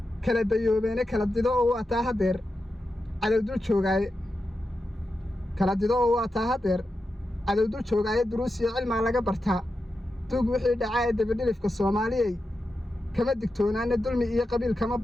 kala dayoobeene kala dido oo waataa haddeer cadowdul joogaaye cadowdul joogaaye duruus iyo cilmaa laga bartaa duug wixii dhacaa ee dabadhilifka soomaaliyey kama digtoonaane dulmi iyo qabiil kama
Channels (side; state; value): both; normal; correlation 0.89